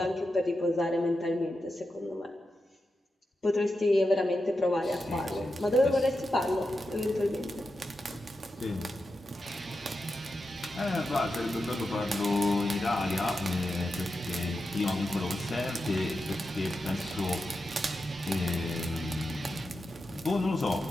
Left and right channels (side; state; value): both; normal; correlation 0.89